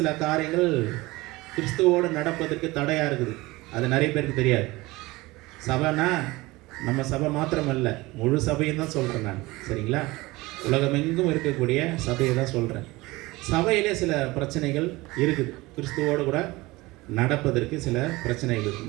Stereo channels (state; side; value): quieter; left; 21.1 dB